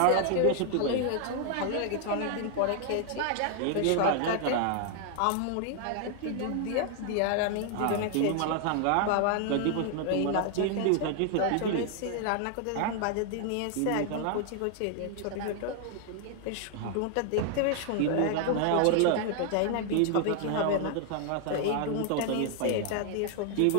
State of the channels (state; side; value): different; both; correlation 0.00